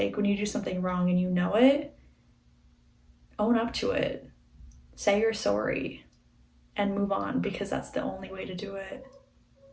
when you do something wrong and you know it, own up to it. Say you're sorry and move on, because that's the only way to do it.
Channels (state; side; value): identical; both; correlation 1.00